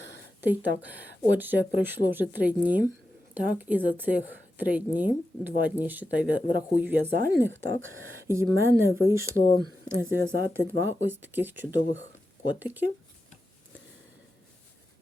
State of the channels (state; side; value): normal; both; correlation 0.90